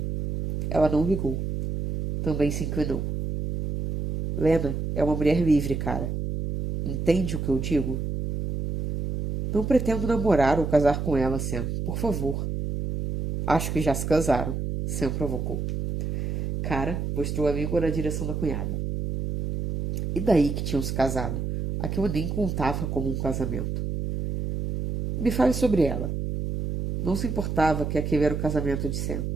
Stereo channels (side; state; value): right; noise; hum, 3 dB below the sound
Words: Ela não ligou. Também se inclinou. Lena é uma mulher livre, cara. Entende o que eu digo? Não pretendo namorar ou casar com ela, Sam. Por favor. Acho que já se casaram. Sam provocou. Cara mostrou a língua na direção da cunhada. E daí que tinham se casado? Aquilo nem contava como um casamento. Me fale sobre ela. Não se importava que aquele era o casamento de Sam.